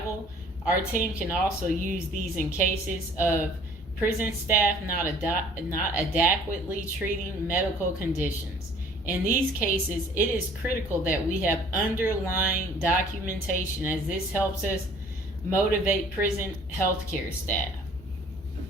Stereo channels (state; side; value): noise; left; rumble, 19 dB below the sound